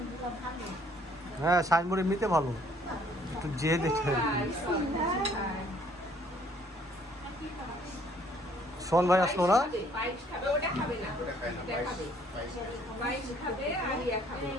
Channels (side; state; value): both; normal; correlation 0.62